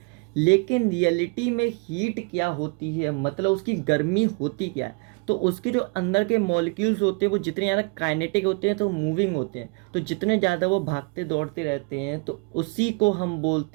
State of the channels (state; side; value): quieter; left; 31.5 dB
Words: लेकिन रियलिटी में हीट क्या होती है, मतलब उसकी गर्मी होती क्या है, तो उसके जो अंदर के मॉलिक्यूल्स होते हैं वो जितने ज़्यादा काइनेटिक होते हैं तो मूविंग होते हैं, तो जितने ज़्यादा वो भागते दौड़ते रहते हैं तो उसी को हम